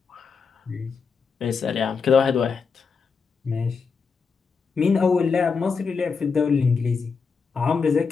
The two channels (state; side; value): quieter; right; 5.3 dB